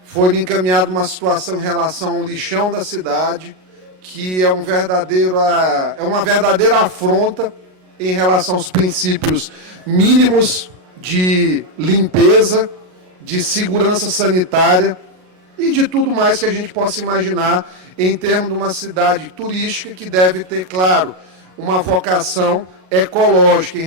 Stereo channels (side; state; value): left; late; 33 ms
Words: Foi-me encaminhada uma situação em relação ao lixão da cidade, que é uma verdadeira afronta em relação aos princípios mínimos de limpeza, de segurança sanitária e de tudo mais que a gente possa imaginar em termos de uma cidade turística que deve ter, claro, uma vocação ecológica em